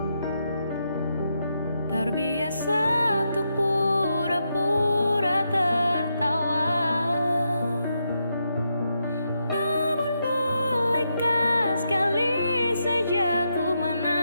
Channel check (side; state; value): both; inverted; correlation -0.82